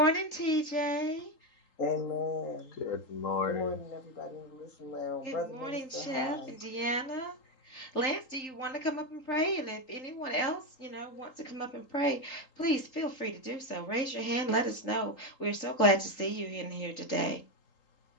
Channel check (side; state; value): right; late; 3.8 ms